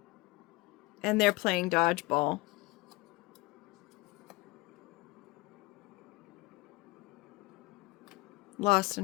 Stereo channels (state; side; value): quieter; right; 22.7 dB